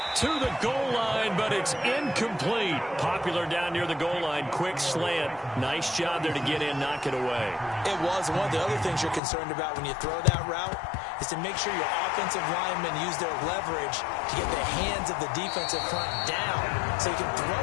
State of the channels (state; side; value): drops out; right; at 9.2 s